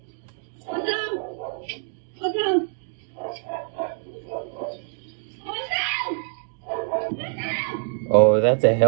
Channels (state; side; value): silent; left; 62 dB below the other